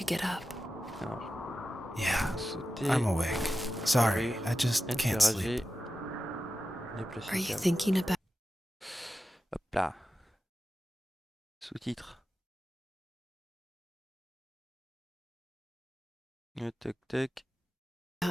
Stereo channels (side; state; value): both; normal; correlation 0.93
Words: get up. Alors, Yeah, sauter, I'm awake. Sorry, carré, I just can't sleep. Déplacer Are you câble. thinking about Hop là. Sous-titres. Tac tac.